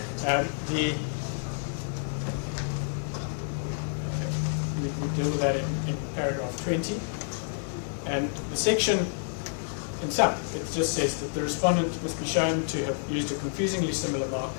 We deal with that in paragraph 20. And the section, in sum, it just says that the respondent must be shown to have used a confusingly similar mark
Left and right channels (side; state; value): right; silent; digital silence